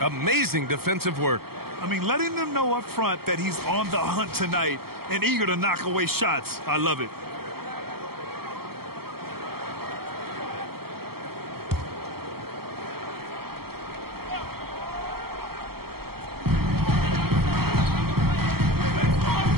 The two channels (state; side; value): late; left; 0.95 ms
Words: Amazing defensive work. I mean, letting them know up front that he's on the hunt tonight and eager to knock away shots. I love it.